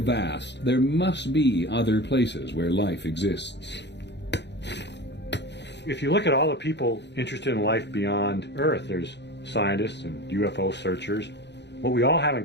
there must be other places where life exists. If you look at all the people interested in life beyond Earth, there's scientists and UFO searchers. What we all have in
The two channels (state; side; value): late; right; 0.50 ms